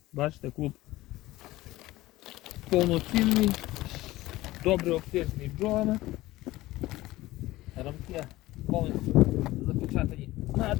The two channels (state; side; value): quieter; right; 17.7 dB